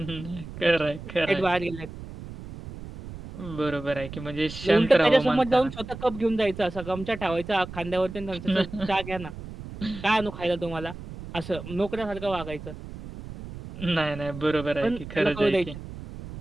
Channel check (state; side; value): noise; right; rumble, 12 dB below the sound